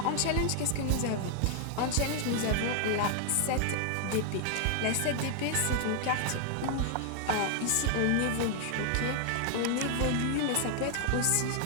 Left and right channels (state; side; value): different; both; correlation 0.00